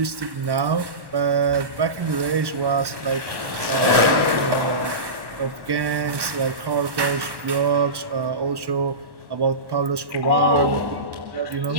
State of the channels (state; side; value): late; left; 1.1 ms